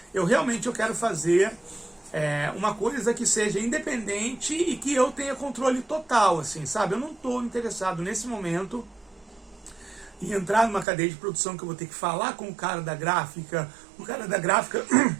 Eu quero fazer uma coisa que seja independente e que eu tenha controle total, assim, sabe? Eu não estou interessado nesse momento em entrar numa cadeia de produção que eu vou ter que falar com o cara da gráfica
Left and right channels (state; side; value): drops out; left; at 10.9 s